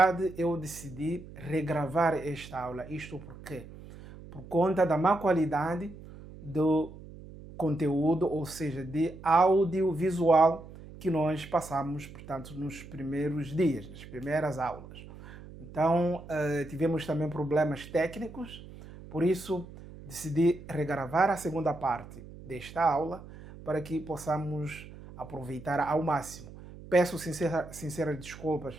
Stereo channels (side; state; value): right; noise; hum, 16 dB below the sound